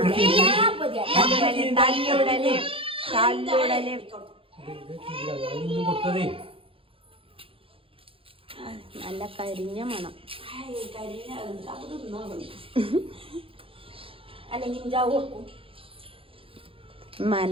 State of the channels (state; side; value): late; left; 0.27 ms